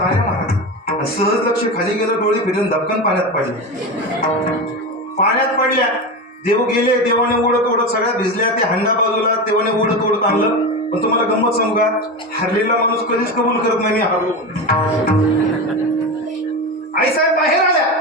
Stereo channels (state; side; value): normal; both; correlation 0.21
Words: महाराज. सहज लक्ष खाली गेलं, डोळे फिरून धपकन पाण्यात पडल्या. देव गेले, देवाने ओढत सगळ्या भिजल्या, ते हंडा बाजूला देवाने ओढत आणलं. पण तुम्हाला गंमत सांगू का, हरलेला माणूस कधीच कबूल करत नाही मी हरलो. आईसाहेब बाहेर आल्या,